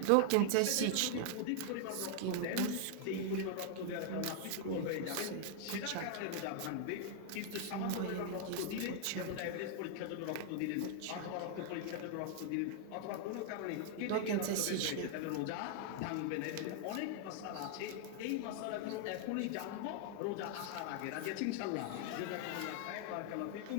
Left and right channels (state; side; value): different; both; correlation 0.00